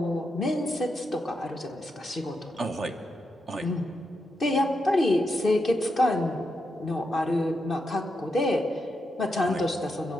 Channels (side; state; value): both; normal; correlation 0.84